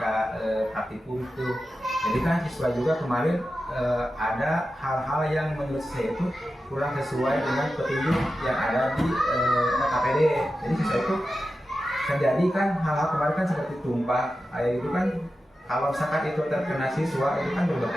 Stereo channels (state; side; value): normal; both; correlation 0.92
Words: praktikum itu. Jadi kan siswa juga kemarin ada hal-hal yang menurut saya itu kurang sesuai dengan petunjuk yang ada di KPD. Jadi siswa itu terjadi kan hal-hal kemarin kan seperti tumpah air itu kan, kalau misalkan itu terkena siswa itu kan